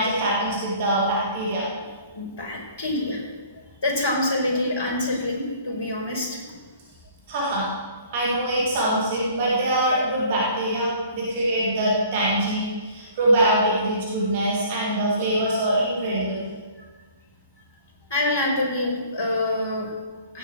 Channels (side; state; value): both; inverted; correlation -0.52